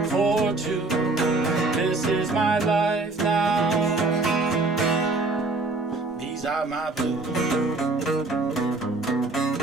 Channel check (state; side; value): quieter; left; 3.3 dB